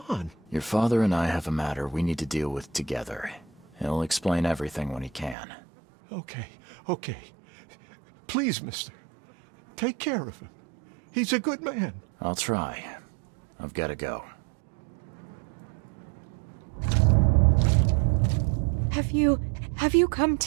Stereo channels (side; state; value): left; drops out; at 5.4 s